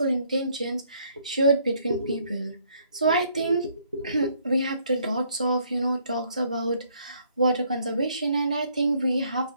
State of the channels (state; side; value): inverted; both; correlation -0.67